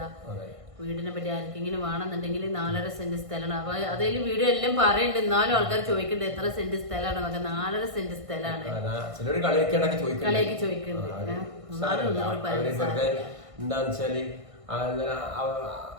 വീടിനെ പറ്റി ആർക്കെങ്കിലും വേണമെന്നുണ്ടെങ്കിൽ 4.5 സെന്റ് സ്ഥലമാണ്. അപ്പൊ അതിൽ വീഡിയോ എല്ലാം പറയുന്നുണ്ട്. എന്നാലും ആൾക്കാർ ചോദിക്കുന്നുണ്ട് എത്ര സെന്റ് സ്ഥലമാണ് എന്നൊക്കെ. 4.5 സെന്റ് സ്ഥലമാണ്. കളിയൊക്കെ ചോദിക്കുന്നുണ്ട്. എന്താന്ന് വെച്ചാല്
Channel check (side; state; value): left; late; 1.5 ms